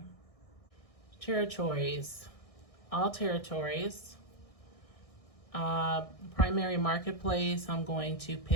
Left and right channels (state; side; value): late; right; 1.6 ms